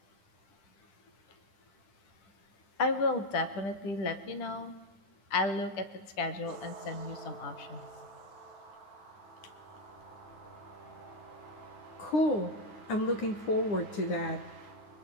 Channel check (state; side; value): late; right; 10 ms